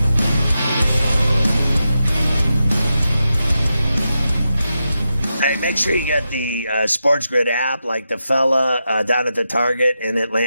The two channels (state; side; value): inverted; both; correlation -0.88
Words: Hey, make sure you get the SportsGrid app, like the fella down at the Target in